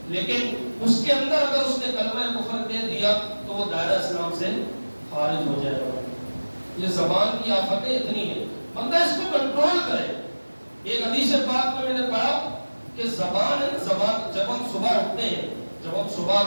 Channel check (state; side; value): inverted; both; correlation -1.00